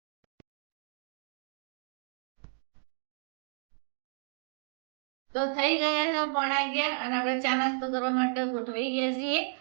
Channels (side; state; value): left; silent; digital silence